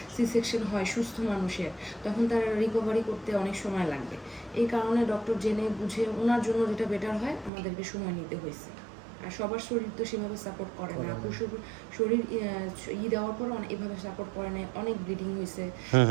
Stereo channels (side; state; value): left; drops out; at 7.5 s